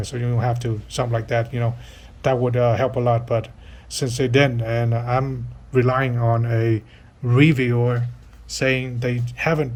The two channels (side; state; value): both; identical; correlation 1.00